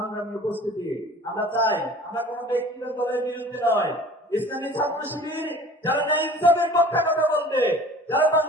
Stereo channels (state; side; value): normal; both; correlation 0.45